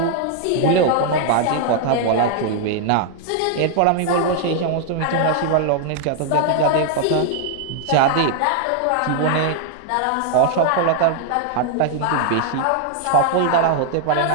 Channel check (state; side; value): different; both; correlation 0.00